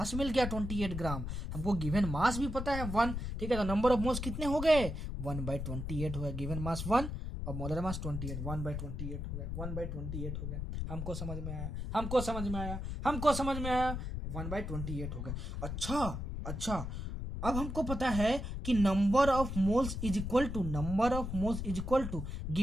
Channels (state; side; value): noise; left; rumble, 5 dB below the sound